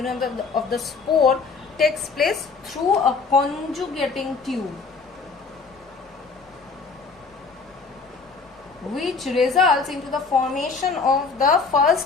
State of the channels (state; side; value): quieter; right; 4.7 dB